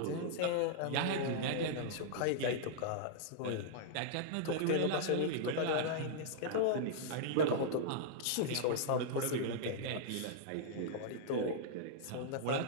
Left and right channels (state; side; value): different; both; correlation -0.02